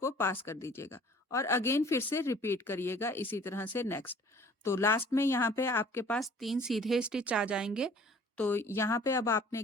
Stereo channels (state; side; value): normal; both; correlation 0.51